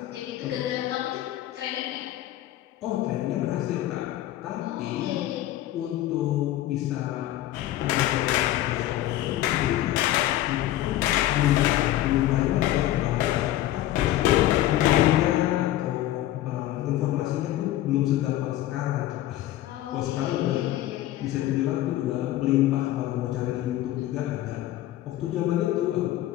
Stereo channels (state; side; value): quieter; right; 14.1 dB